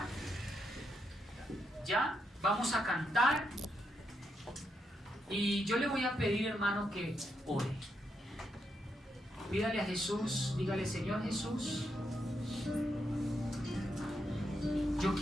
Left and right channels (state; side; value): normal; both; correlation 0.81